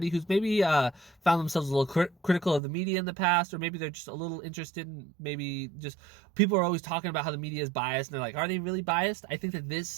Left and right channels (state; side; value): drops out; left; at 2.6 s